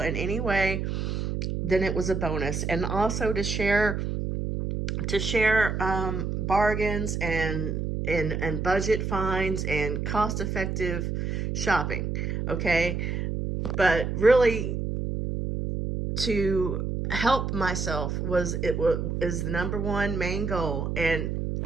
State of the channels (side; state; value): right; noise; hum, 2 dB below the sound